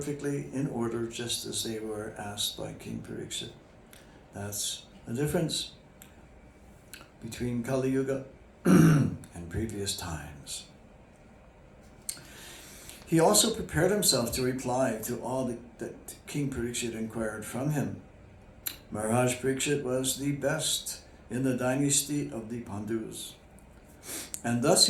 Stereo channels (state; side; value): identical; both; correlation 1.00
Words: in order, just as they were asked by King Parikshit. That's the difference between Kali Yuga and previous times. He also prepared himself to reply to all that King Parikshit inquired from him. Maharaj Parikshit was the best in the dynasty of the Pandus, and thus